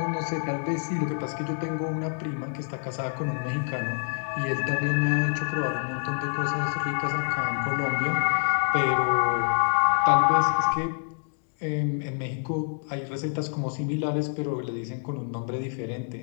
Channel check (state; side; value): silent; right; 60 dB below the other